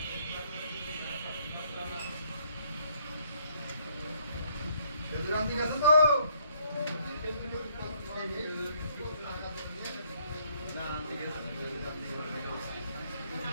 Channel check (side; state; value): both; inverted; correlation -0.66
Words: রান্তি গেছে তো